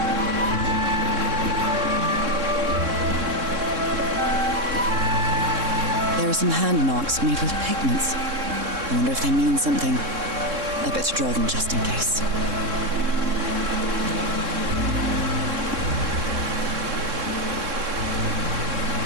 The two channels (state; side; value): late; left; 3.6 ms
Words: There are some hand marks made with pigments. I wonder if they mean something. I better draw them just in case.